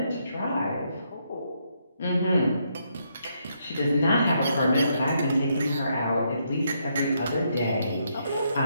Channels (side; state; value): both; inverted; correlation -0.76